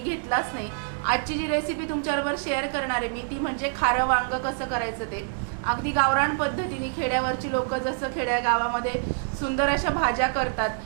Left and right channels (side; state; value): left; silent; digital silence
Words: घेतलाच नाही। आजची जी रेसिपी तुमच्याबरोबर शेअर करणार आहे मी ती म्हणजे खारं वांग कसं करायचं ते अगदी गावरान पद्धतीने। खेड्यावरची लोक जसं खेड्या गावामध्ये सुंदर अशा भाज्या करतात,